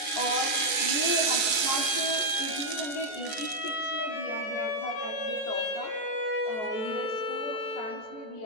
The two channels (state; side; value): late; right; 14 ms